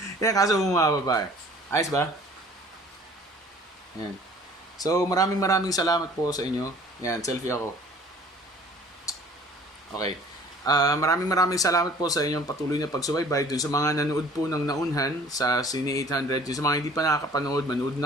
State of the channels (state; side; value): normal; both; correlation 0.51